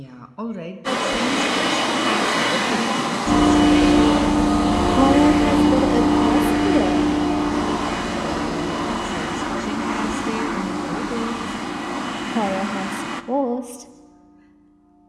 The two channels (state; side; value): identical; both; correlation 1.00